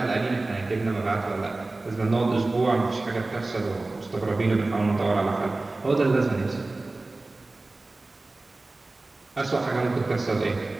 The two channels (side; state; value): left; quieter; 3.1 dB